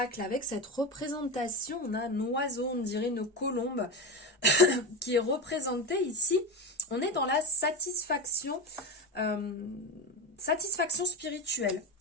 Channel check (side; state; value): both; normal; correlation 0.20